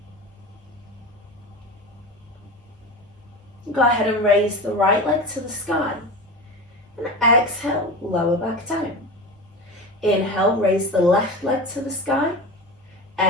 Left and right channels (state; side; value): normal; both; correlation 0.28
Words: Go ahead and raise the right leg to the sky. And exhale, lower back down. Inhale, raise the left leg to the sky.